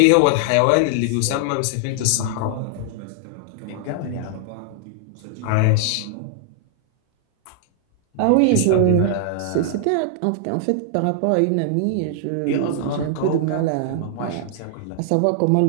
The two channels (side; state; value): both; different; correlation 0.00